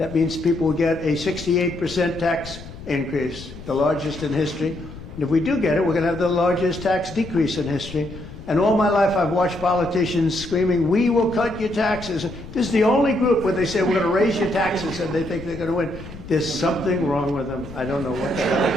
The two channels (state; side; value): noise; left; rumble, 14 dB below the sound